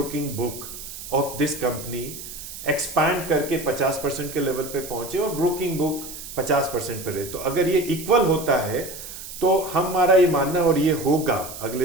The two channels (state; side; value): noise; right; hiss, 11 dB below the sound